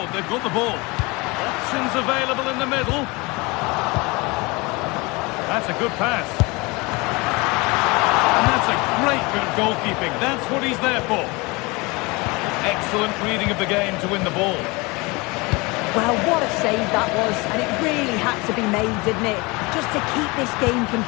They've got the ball. Options available in the middle. That's a good pass. And that's a great bit of goalkeeping. That's what he's there for. Excellent reading of the game to win the ball. Well, what a save that was, and it really had to be made, didn't it? Just to keep this game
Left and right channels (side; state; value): right; quieter; 25.4 dB